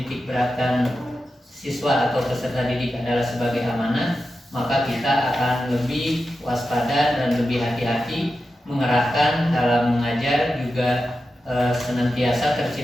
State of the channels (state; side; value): normal; both; correlation 0.91